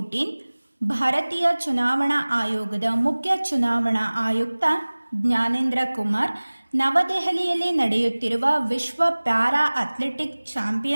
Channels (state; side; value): inverted; both; correlation -1.00